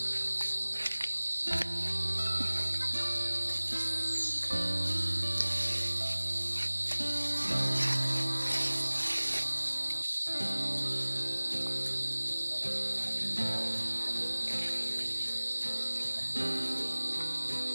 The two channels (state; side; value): inverted; both; correlation -1.00